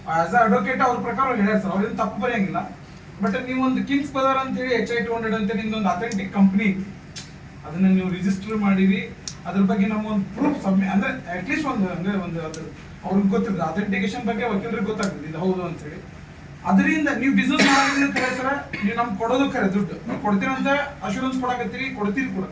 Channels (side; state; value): both; identical; correlation 1.00